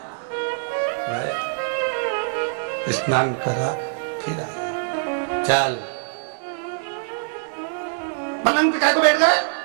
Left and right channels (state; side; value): silent; left; digital silence